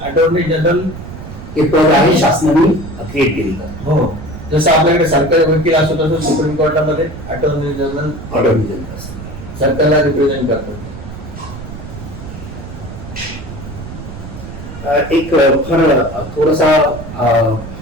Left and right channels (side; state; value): right; noise; rumble, 12 dB below the sound